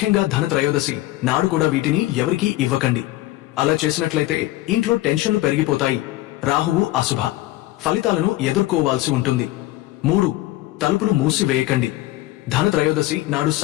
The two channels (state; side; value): quieter; right; 17.1 dB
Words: ధనత్రయోదశి నాడు కూడా వీటిని ఎవరికీ ఇవ్వకండి. అలా చేసినట్లయితే ఇంట్లో టెన్షన్లు పెరిగిపోతాయి, రాహువు అశుభ ఫలితాలను ఎదుర్కోవాల్సి ఉంటుంది. 3. తలుపులు మూసివేయకండి. ధనత్రయోదశి నాడు